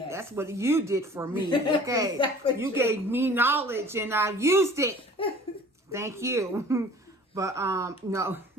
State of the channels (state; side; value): normal; both; correlation 0.48